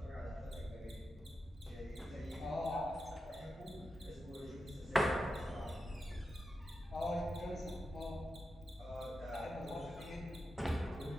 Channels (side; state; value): both; normal; correlation 0.89